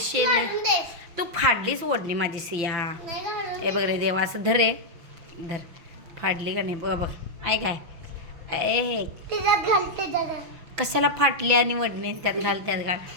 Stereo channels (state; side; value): late; left; 6.0 ms